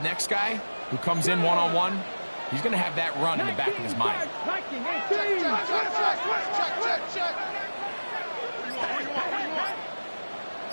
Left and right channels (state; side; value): inverted; both; correlation -1.00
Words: guy who comes in one-on-one, he's going to have that run in the back of his mind.